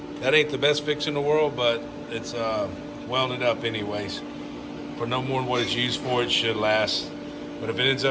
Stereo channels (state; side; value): identical; both; correlation 1.00